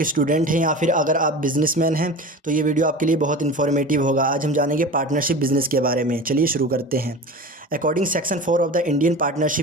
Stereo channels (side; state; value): both; normal; correlation 0.33